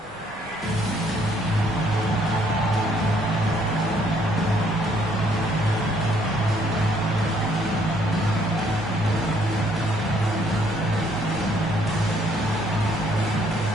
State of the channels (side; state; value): both; normal; correlation 0.66